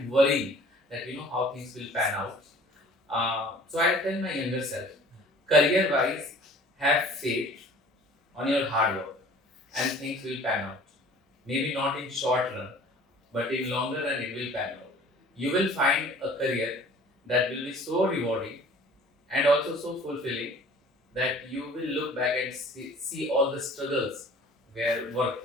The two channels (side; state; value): both; normal; correlation 0.49